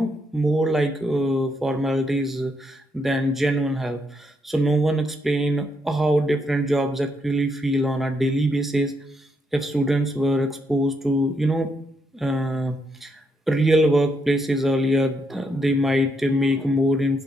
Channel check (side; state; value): both; normal; correlation 0.77